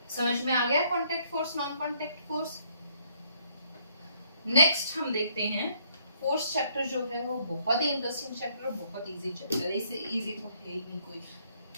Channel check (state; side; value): inverted; both; correlation -0.67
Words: समझ में आ गया contact force, non contact force. Next हम देखते हैं फोर्स चैप्टर जो है वो बहुत ही इंटरेस्टिंग चैप्टर, बहुत इजी चैप्टर है, इससे इजी तो है ही नहीं कोई।